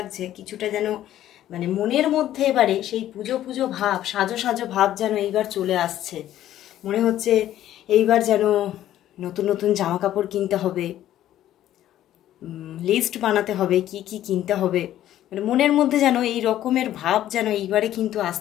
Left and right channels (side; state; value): right; quieter; 12.6 dB